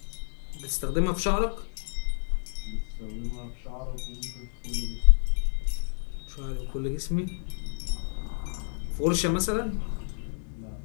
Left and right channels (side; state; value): right; silent; 58 dB below the other